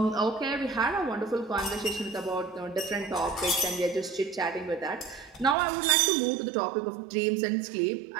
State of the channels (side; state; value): left; drops out; at 5.6 s